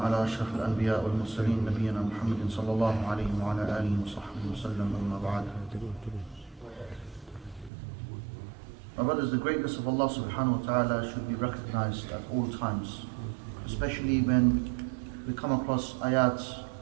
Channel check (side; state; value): left; drops out; at 7.7 s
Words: أشرف الأنبياء والمرسلين نبينا محمد صلى الله عليه وعلى آله وصحبه وسلم أما بعد. My brothers, the greatness of Allah subhanahu wa ta'ala should be recognized at all times, especially when we come across ayat